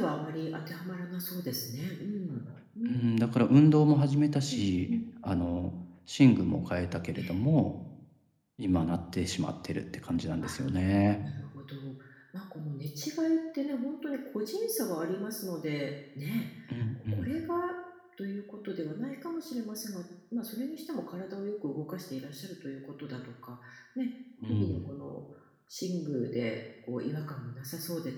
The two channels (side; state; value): both; identical; correlation 1.00